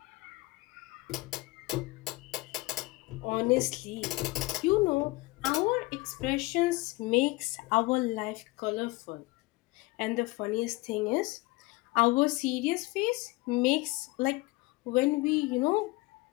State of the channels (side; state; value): right; quieter; 22.4 dB